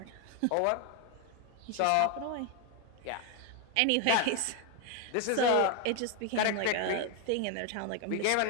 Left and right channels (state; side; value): different; both; correlation 0.01